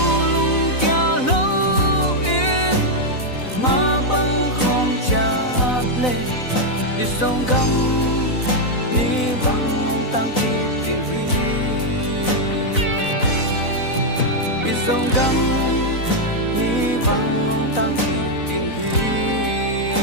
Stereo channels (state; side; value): late; right; 4.0 ms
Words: lung kia lâu in mà băng không chát lên dòng cam ni băng ông tăng kỳ tiếng hi dòng cam ni băng ông tăng kỳ tiếng hi